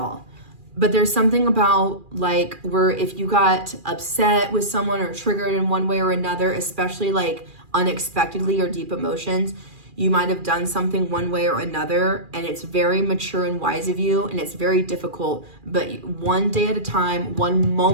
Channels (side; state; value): left; late; 2.4 ms